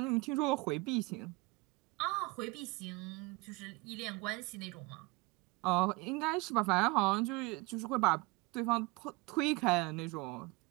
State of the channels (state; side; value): quieter; left; 24.3 dB